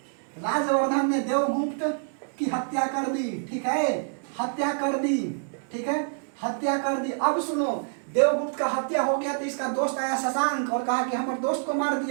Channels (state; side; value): silent; left; digital silence